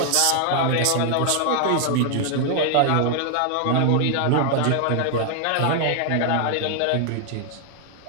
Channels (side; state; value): both; different; correlation 0.00